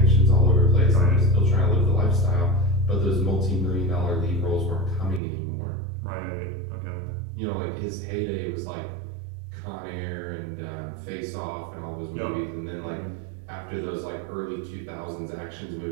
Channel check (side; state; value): left; drops out; at 5.2 s